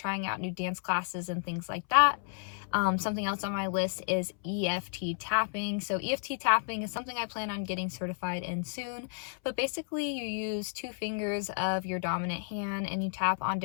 out new dance classes and things like that. Something else on my list is EFT tapping. So EFT tapping is something I plan on getting certified in soon, but basically you use 2 fingers of your dominant hand and you tap on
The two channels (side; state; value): right; silent; 56 dB below the other